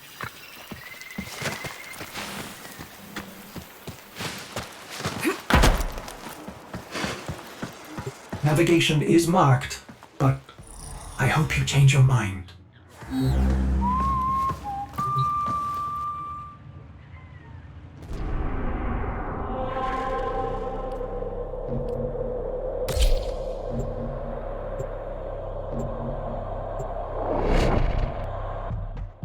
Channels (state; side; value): identical; both; correlation 1.00